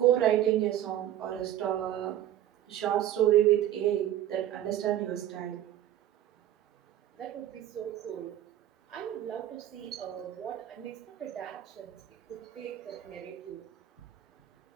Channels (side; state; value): left; quieter; 12.0 dB